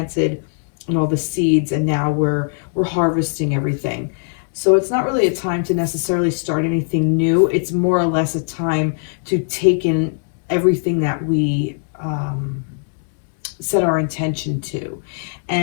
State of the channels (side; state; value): right; silent; digital silence